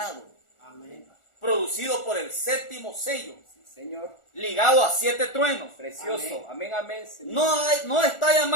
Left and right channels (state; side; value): late; right; 1.4 ms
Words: Amén. Producido por el séptimo sello. Sí, Señor. Ligado a 7 truenos. Precioso. Amén, amén, Señor. No está